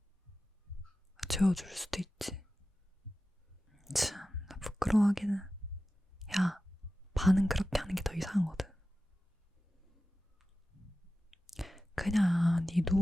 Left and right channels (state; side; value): normal; both; correlation 0.94